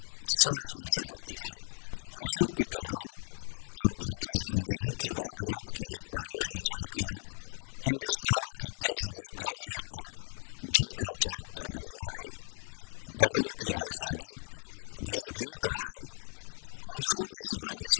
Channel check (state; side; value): silent; right; digital silence